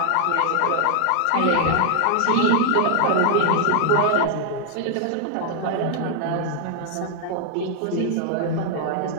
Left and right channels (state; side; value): different; both; correlation 0.00